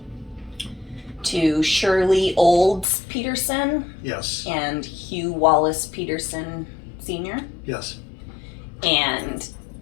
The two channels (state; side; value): drops out; right; at 2.9 s